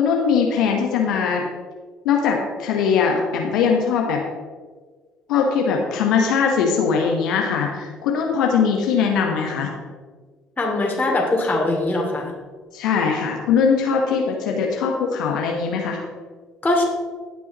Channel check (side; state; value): right; quieter; 5.1 dB